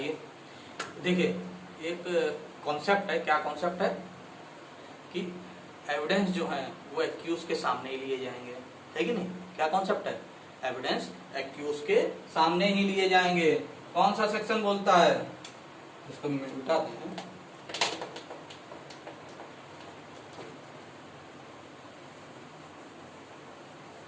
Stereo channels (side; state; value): both; identical; correlation 1.00